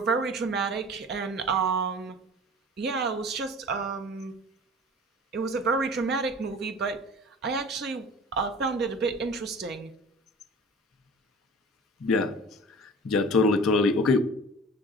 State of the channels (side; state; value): both; normal; correlation 0.41